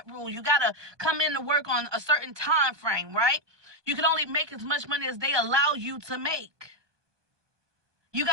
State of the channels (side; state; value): left; late; 1.2 ms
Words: rule, you got to come in to work on a certain time frame, right? You can only make as much money as they allow you to make. You